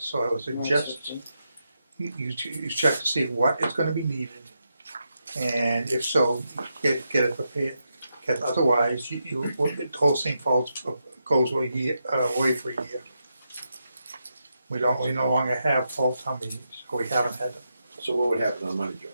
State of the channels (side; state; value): both; inverted; correlation -0.84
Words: so I would suggest you check to see what is gonna be needed, and if so, get it prepared. Because otherwise, the whole thing goes away for a year. We no longer have fall town meetings, or we haven't had them. So what would happen on money, Joe?